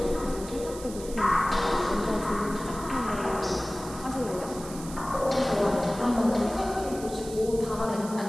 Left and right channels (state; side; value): noise; right; hiss, 15 dB below the sound